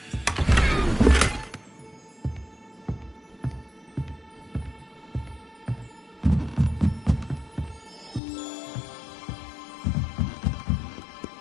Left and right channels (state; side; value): drops out; right; at 8.2 s